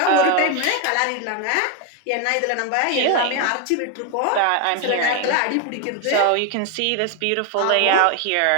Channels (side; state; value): both; different; correlation 0.01